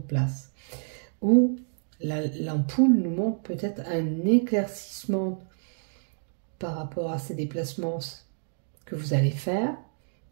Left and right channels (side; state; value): left; silent; digital silence